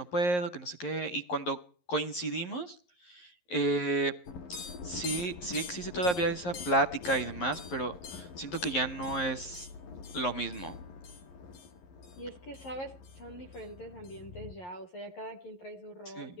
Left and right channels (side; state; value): right; late; 11 ms